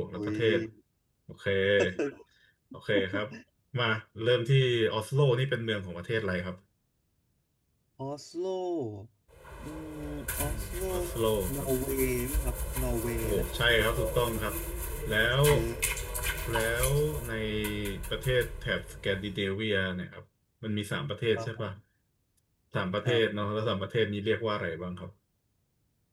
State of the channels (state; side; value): identical; both; correlation 1.00